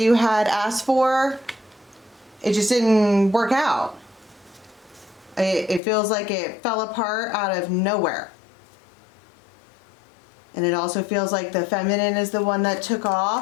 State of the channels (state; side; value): drops out; right; at 5.8 s